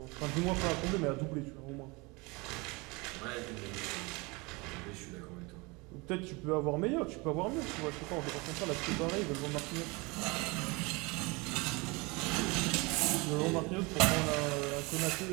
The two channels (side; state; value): left; quieter; 26.2 dB